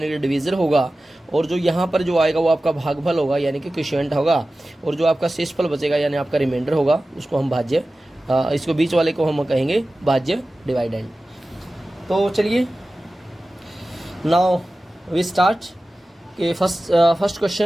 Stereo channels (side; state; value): both; normal; correlation 0.96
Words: कि डिवीज़र होगा, और जो यहाँ पर जो आएगा वो आपका भागफल होगा यानी कि क्वोशिएंट होगा, और जो आपका शेषफल बचेगा यानी आपका रिमाइंडर होगा उसको हम भाज्य, इसको बीच वाले को हम कहेंगे भाज्य डिवाइडेंड। तो चलिए नाउ वी स्टार्ट के first